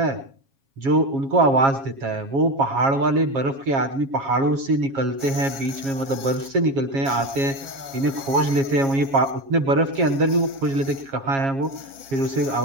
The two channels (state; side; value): late; left; 7.3 ms